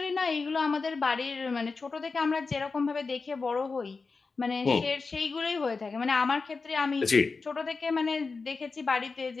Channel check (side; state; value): right; quieter; 4.3 dB